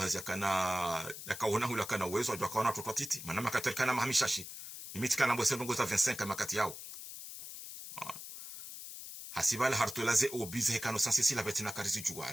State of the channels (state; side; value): noise; left; hiss, 11 dB below the sound